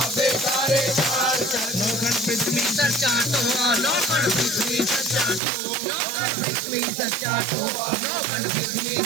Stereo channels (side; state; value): left; drops out; at 5.4 s